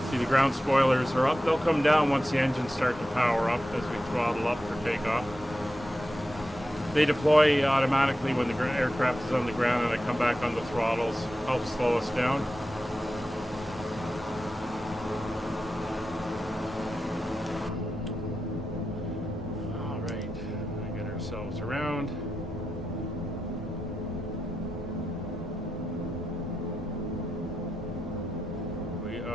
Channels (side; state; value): both; normal; correlation 0.90